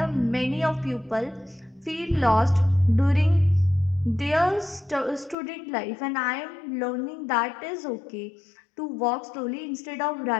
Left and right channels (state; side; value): drops out; right; at 5.4 s